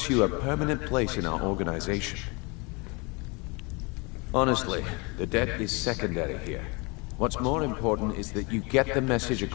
you a permanent place in our organization. Honestly, the debt is secondary here. What's more important is that you get the message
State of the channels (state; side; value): quieter; right; 28.9 dB